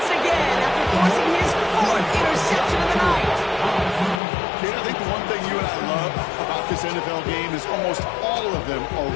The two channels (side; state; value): right; drops out; at 4.2 s